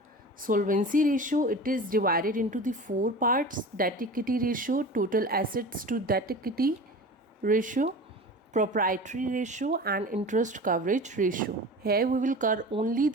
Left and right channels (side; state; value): both; normal; correlation 0.35